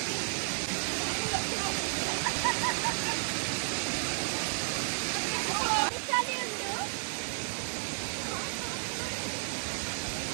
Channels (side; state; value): left; silent; digital silence